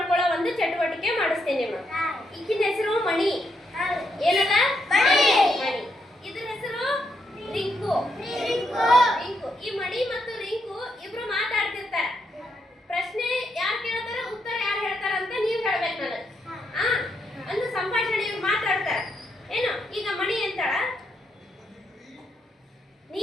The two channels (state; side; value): normal; both; correlation 0.79